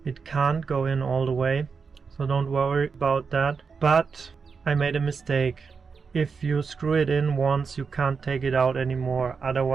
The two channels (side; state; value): left; quieter; 5.4 dB